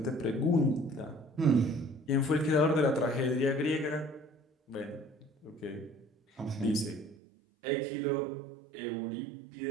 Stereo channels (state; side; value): drops out; left; at 7.2 s